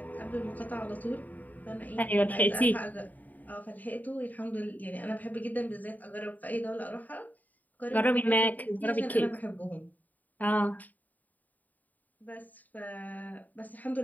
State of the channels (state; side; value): late; right; 0.080 ms